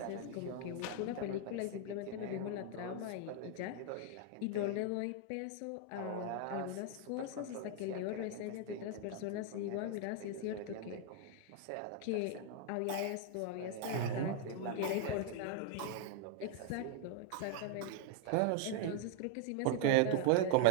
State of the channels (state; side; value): different; both; correlation 0.00